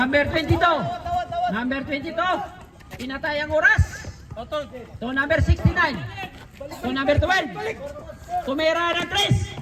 22. Number 22. Pinatay ang oras. To number 69. To number 12. Tumira ng 3.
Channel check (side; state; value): both; identical; correlation 1.00